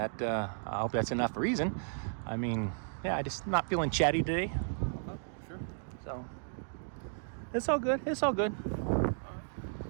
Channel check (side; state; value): left; silent; digital silence